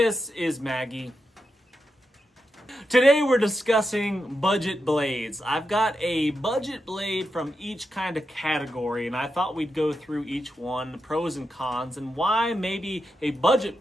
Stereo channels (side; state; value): both; normal; correlation 0.87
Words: is Maggie. Today we're discussing budget blades. I've got a budget blade from each kind of category and I thought we'd go through each one, the pros and cons, and why maybe a budget